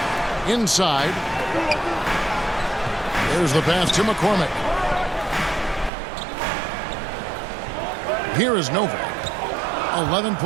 Inside. There's the pass to McCormick. Here is Novak. 11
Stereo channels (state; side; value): drops out; left; at 5.9 s